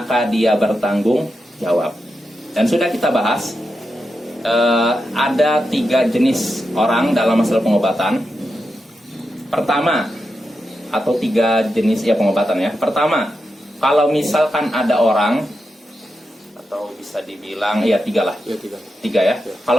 dia bertanggung jawab. Dan sudah kita bahas, ada 3 jenis orang dalam masalah pengobatan. Pertama, atau 3 jenis ya pengobatan ya. Pertama, kalau misalkan ada orang, atau bisa dibilang ya 3 lah. Ya, 3 ya.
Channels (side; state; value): both; normal; correlation 0.88